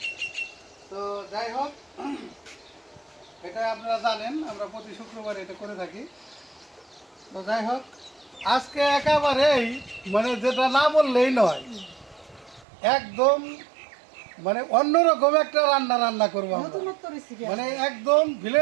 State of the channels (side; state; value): left; drops out; at 12.7 s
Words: তো যাই হোক, এটা আপনারা জানেন আমরা প্রতি শুক্রবার এটা করে থাকি। তো যাই হোক, আজকে একেবারেই মানে যেটা না বললেই নয়, একদম মানে অন্যরকম একটা রান্না করবো আমরা। নতুনত্ব রেসিপি মানে একদম